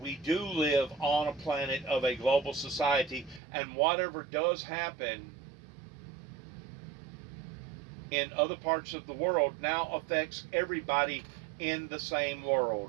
do live on a planet of a global society, and whatever does happen in other parts of the world now affects everybody in the same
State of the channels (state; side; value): drops out; left; at 3.4 s